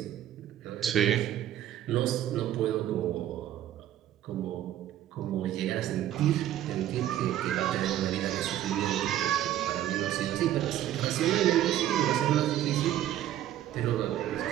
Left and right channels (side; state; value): left; quieter; 12.3 dB